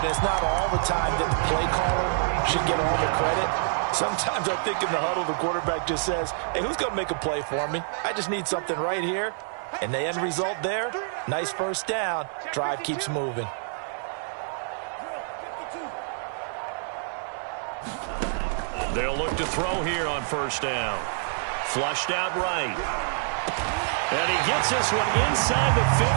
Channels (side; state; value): left; silent; 60 dB below the other